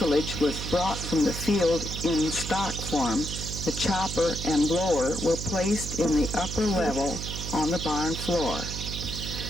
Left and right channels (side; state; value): right; noise; hum, 6 dB below the sound